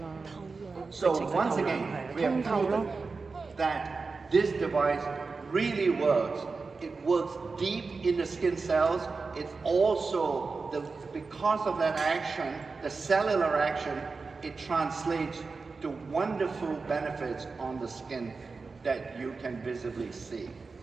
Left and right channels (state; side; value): quieter; left; 4.3 dB